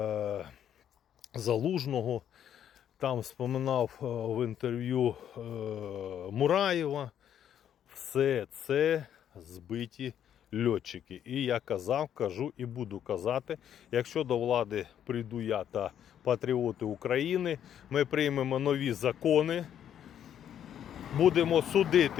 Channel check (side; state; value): right; quieter; 9.8 dB